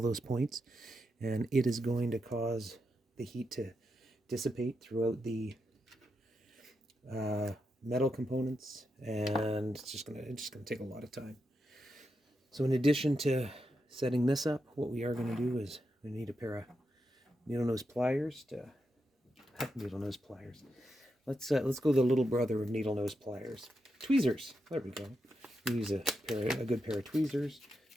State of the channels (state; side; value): normal; both; correlation 0.86